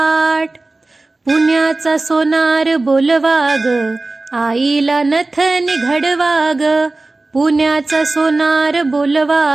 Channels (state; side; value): quieter; left; 3.2 dB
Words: पुण्याचा सोनार बोलवा ग, आईला नथनी घडवा ग, पुण्याचा सोनार